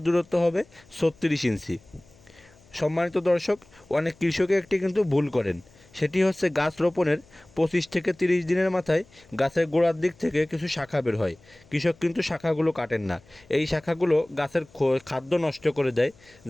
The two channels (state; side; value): noise; left; hum, 28 dB below the sound